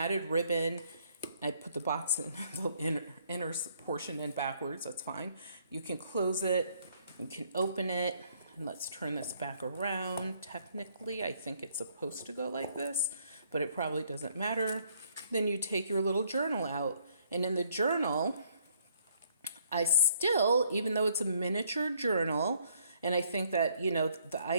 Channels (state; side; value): inverted; both; correlation -0.66